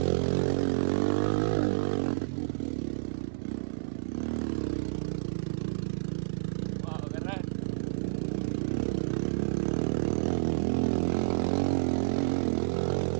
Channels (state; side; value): silent; left; digital silence